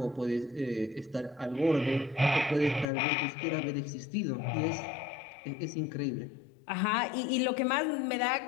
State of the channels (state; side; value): drops out; right; at 2.9 s